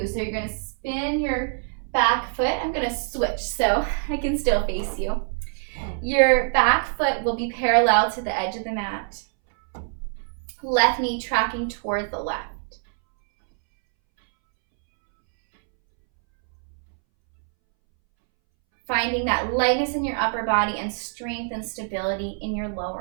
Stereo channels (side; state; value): left; silent; 62 dB below the other